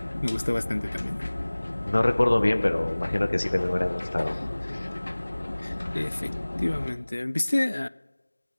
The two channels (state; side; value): inverted; both; correlation -1.00